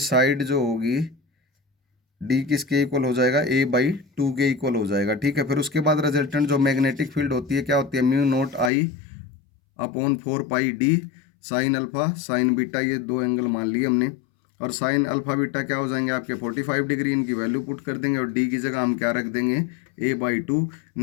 साइड जो होगी D किसके इक्वल हो जाएगा, A/2 के इक्वल हो जाएगा। ठीक है, फिर उसके बाद रिजल्टेंट जो मैग्नेटिक फील्ड होती है क्या होती है, μ0I/4πD sine alpha sign beta, ये दो एंगल मान लिए हमने, और साइन अल्फा बीटा क्या हो जाएंगे आपके 45 डिग्री, इनकी वैल्यू पुट कर देंगे, और D की जगह हम क्या रख देंगे, A/2।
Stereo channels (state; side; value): drops out; right; at 8.7 s